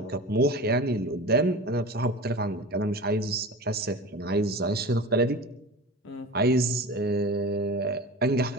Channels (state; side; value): normal; both; correlation 0.33